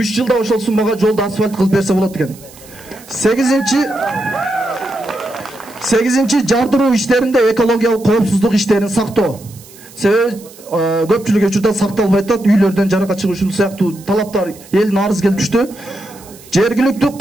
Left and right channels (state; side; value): noise; right; hiss, 22 dB below the sound